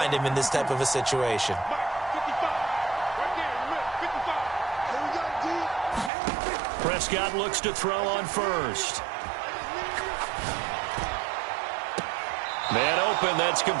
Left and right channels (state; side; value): drops out; left; at 6.1 s